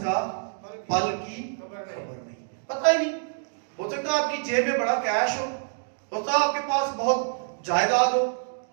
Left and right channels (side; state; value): left; silent; digital silence